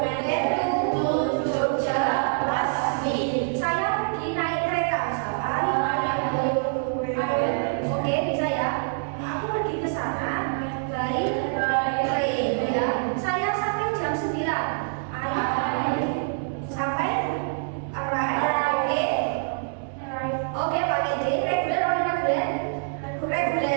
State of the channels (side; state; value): left; silent; 61 dB below the other